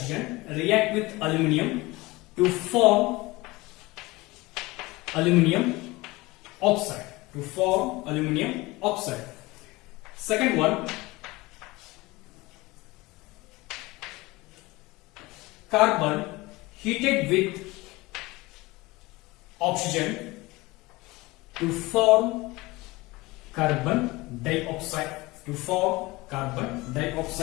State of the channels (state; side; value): quieter; right; 21.6 dB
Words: react with aluminium to form aluminium oxide. Second one, carbon heated with oxygen to form carbon dioxide.